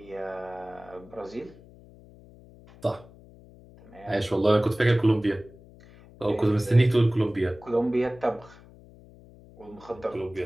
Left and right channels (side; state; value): left; noise; hum, 22 dB below the sound